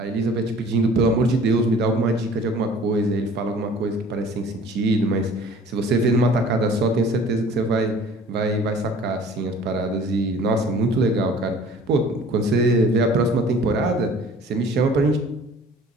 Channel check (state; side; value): normal; both; correlation 0.49